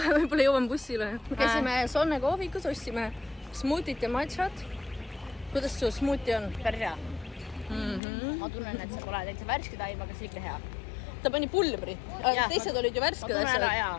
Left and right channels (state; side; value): drops out; right; at 8.0 s